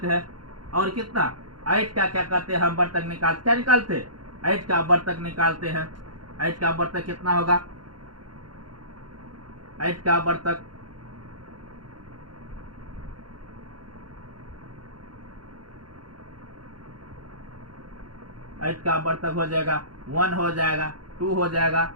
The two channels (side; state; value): left; late; 0.71 ms